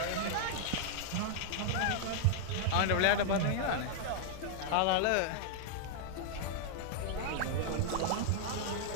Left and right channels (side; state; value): both; different; correlation -0.01